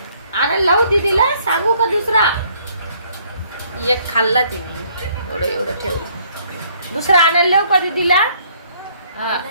आणायला लावू दीदीला, सांगू का दुसरा? एक खाल्ला तिने, एवढं ठेवलं. दुसरा आणायला लावू का दीदीला? हा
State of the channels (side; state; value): both; inverted; correlation -0.63